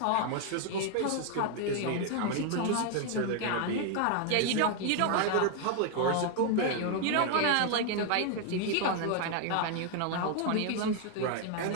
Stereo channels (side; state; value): both; different; correlation 0.01